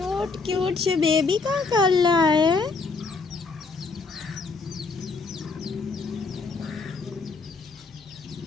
क्यूट से बेबी का कर रहा है।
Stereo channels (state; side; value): quieter; right; 4.2 dB